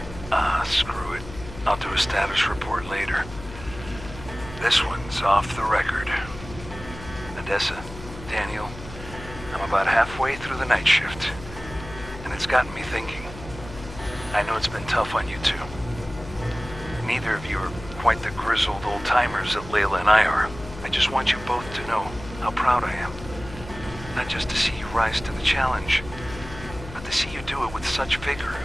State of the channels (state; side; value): noise; left; hum, 13 dB below the sound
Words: Screw it. I'll do a status report later. This one's off the record. Odessa, Daniel, I'm about halfway through the night shift. And it's gotten me thinking. I know it's been tough on you two. Neither of you are quite the grizzled old-timers that Layla and I are. I just want you both to know how proud I am. Not just to see you rise to the challenge, but to see you do it with such vigor